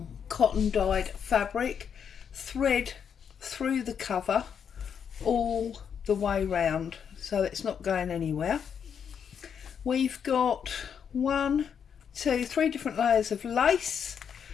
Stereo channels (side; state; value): right; quieter; 7.5 dB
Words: cotton dyed fabric, thread through the cover all the way round, so it's not going anywhere. We've got 1, 2, 3 different layers of lace.